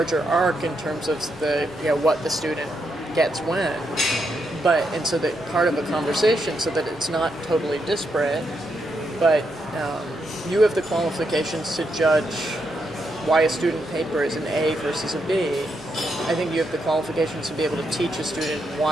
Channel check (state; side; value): normal; both; correlation 0.81